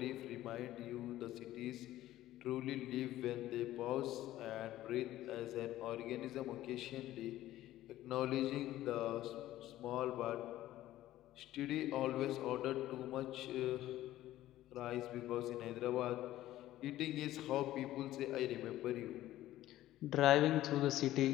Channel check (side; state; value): right; quieter; 14.6 dB